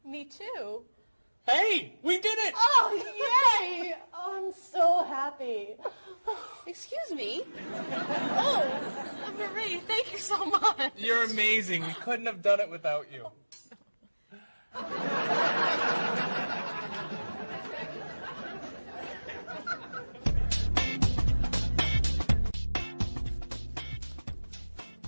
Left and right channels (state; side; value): inverted; both; correlation -1.00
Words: Me too. Hey, we did it! Oh, yay! Oh, I'm so happy. Excuse me. Oh, Marie, thank you so much. You're amazing. We couldn't have done it without you.